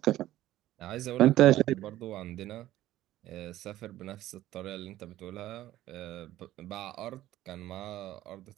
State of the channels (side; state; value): left; quieter; 14.4 dB